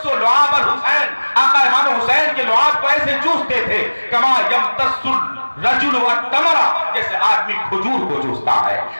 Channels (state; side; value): inverted; both; correlation -1.00